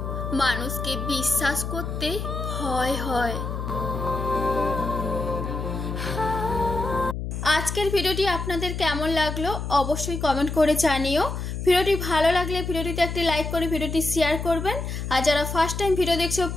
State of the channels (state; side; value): noise; left; hum, 5 dB below the sound